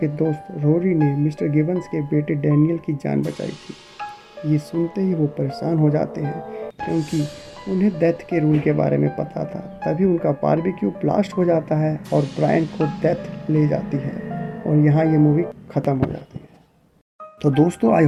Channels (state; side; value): identical; both; correlation 1.00